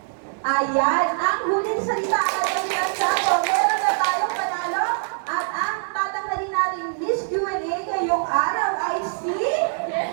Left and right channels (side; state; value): left; silent; digital silence